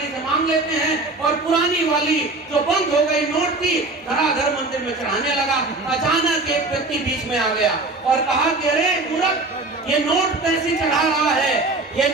से मांग लेते हैं। और पुरानी वाली जो बंद हो गई नोट थी, धड़ाधड़ मंदिर में चढ़ाने लगा। अचानक एक व्यक्ति बीच में आ गया और कहा कि अरे मूर्ख, ये नोट कैसे चढ़ा रहा है, ये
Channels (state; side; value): quieter; left; 3.2 dB